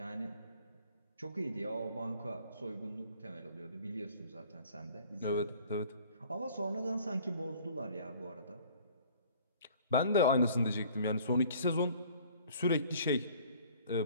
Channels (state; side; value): inverted; both; correlation -0.52